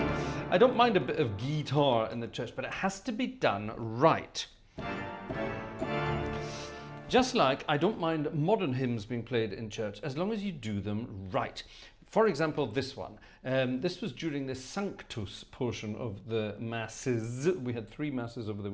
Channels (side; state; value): both; identical; correlation 1.00